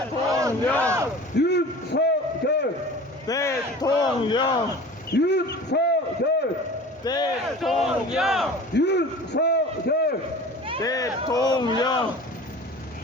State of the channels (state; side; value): normal; both; correlation 0.40